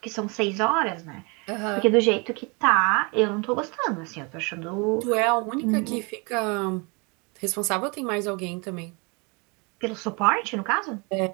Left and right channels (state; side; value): quieter; left; 30.5 dB